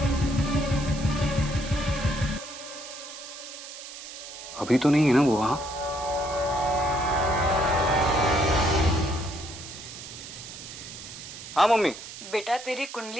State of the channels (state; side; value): noise; right; hiss, 12 dB below the sound